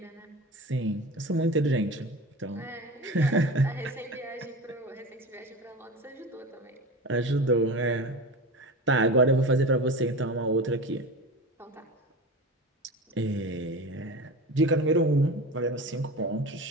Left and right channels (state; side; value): normal; both; correlation 0.30